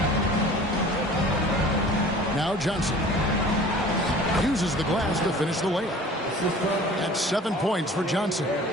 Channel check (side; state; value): both; normal; correlation 0.45